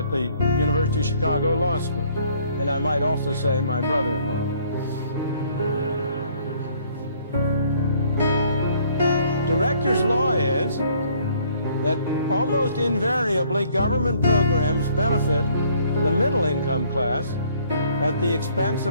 the University of Chicago Law School. And I might also say my brother-in-law. Director's law is that almost invariably government programs benefit the middle income class at the expense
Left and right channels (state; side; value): inverted; both; correlation -0.62